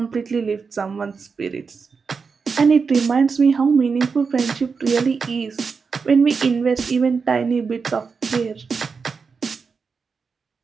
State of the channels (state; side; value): quieter; left; 5.2 dB